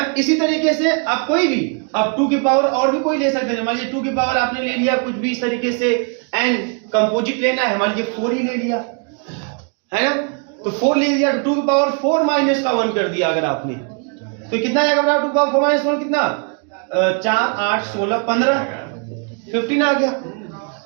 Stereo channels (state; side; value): quieter; left; 38.8 dB